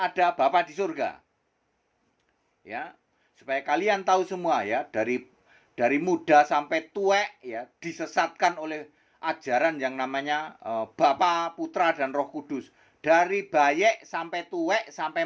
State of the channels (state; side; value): identical; both; correlation 1.00